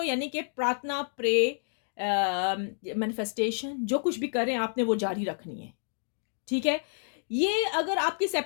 यानी कि प्रार्थना, प्रे, मैनिफेस्टेशन, जो कुछ भी करें आपने वो जारी रखनी है, ठीक है। ये अगर आपकी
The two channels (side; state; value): right; silent; digital silence